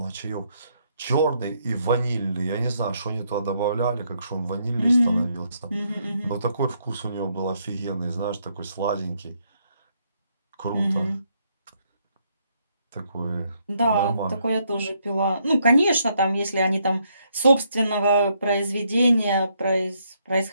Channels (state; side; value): inverted; both; correlation -0.74